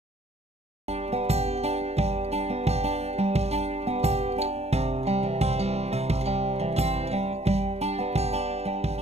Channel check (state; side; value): late; left; 0.31 ms